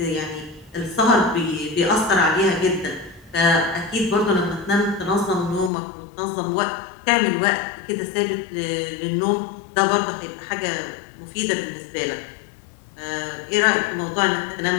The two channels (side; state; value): right; drops out; at 5.7 s